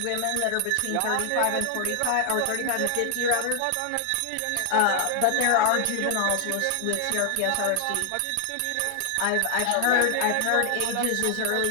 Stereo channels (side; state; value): both; different; correlation 0.00